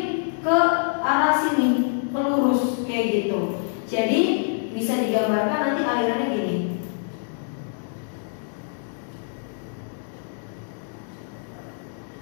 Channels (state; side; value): silent; right; digital silence